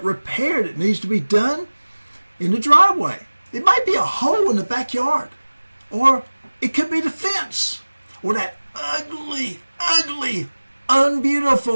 repair that needs to be done in the driveway. It might be a hole in the backyard. Or it could be the fence. Or that ugly,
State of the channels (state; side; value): inverted; both; correlation -1.00